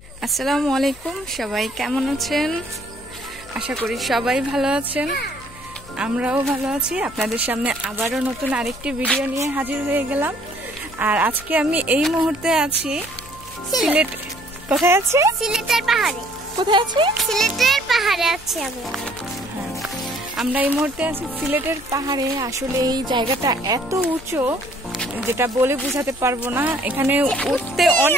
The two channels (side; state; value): left; noise; hum, 22 dB below the sound